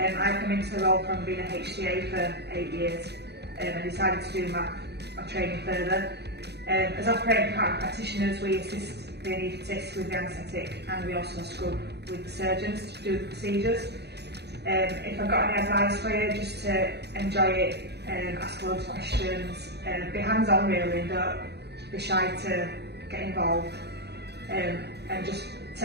come into the role from being a HCA for 8 years and decided to do my training further. As operating department practitioners, we assist the anaesthetist with the anaesthetic, and we also scrub with the surgeons to do the procedures. If I've got any advice for you, just to enjoy it, ask loads of questions, be hands-on really, don't be shy to get involved, and just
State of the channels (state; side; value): late; left; 0.48 ms